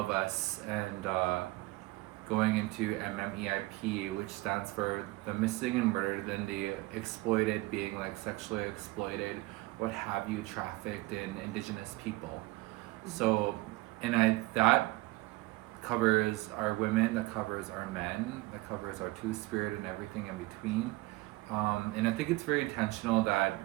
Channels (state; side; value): quieter; left; 21.1 dB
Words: us, and going into MMEIP, which stands for the missing and murdered, then the exploited, being like sexually exploited, what have you, trafficked in Indigenous people. So, and that covers our women, that covers our men, that covers our Two-Spirit and everything in between. And I think it's very intentional that